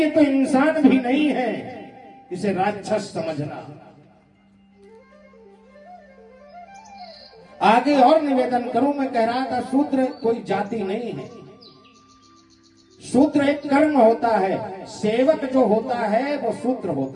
तो इंसान भी नहीं है, इसे राक्षस समझना। आगे और निवेदन करूं, मैं कह रहा था शूद्र कोई जाति नहीं है, शूद्र एक कर्म होता है। सेवक जो होता है वो शूद्र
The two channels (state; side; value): identical; both; correlation 1.00